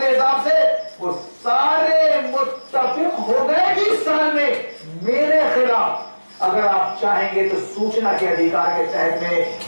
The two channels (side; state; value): both; inverted; correlation -1.00